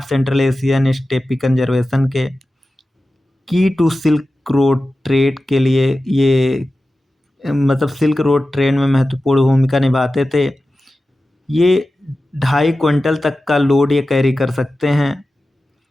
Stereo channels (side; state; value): both; normal; correlation 0.94